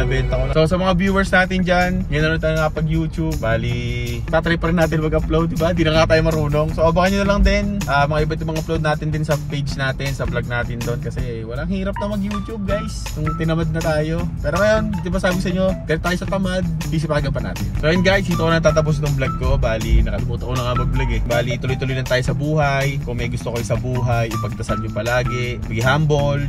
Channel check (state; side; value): identical; both; correlation 1.00